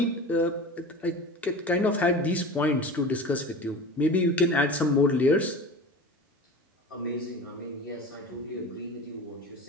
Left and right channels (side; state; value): both; normal; correlation 0.34